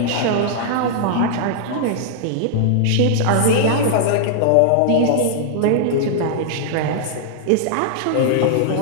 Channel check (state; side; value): different; both; correlation -0.01